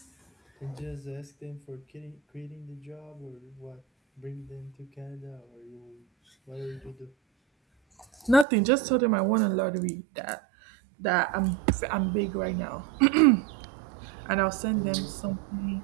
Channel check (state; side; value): drops out; left; at 8.5 s